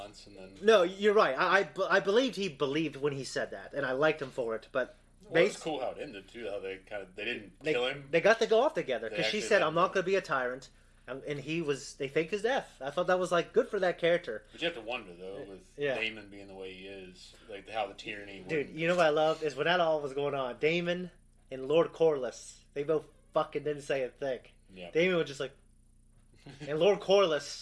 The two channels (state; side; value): identical; both; correlation 1.00